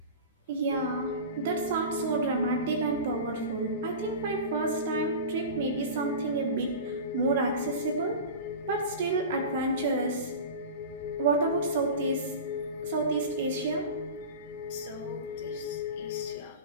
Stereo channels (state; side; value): inverted; both; correlation -0.30